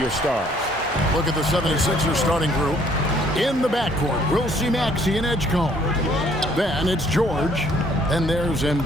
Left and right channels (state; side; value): normal; both; correlation 0.62